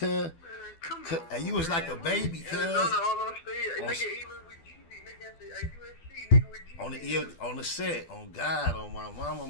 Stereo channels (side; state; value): right; late; 12 ms